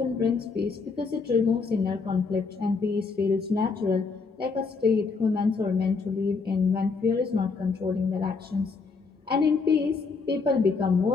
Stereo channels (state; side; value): quieter; right; 4.6 dB